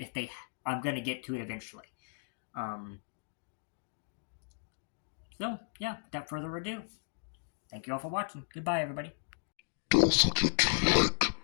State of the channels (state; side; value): silent; right; digital silence